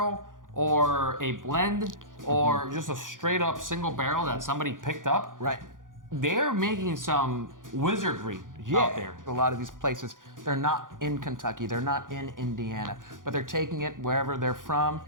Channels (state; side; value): late; left; 0.89 ms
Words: or a blend or just a straight up single barrel that somebody picked up, they're making some wizardry out there. A lot of these places, they're not in Kentucky, they're not in Indiana, but they're taking it wherever they're from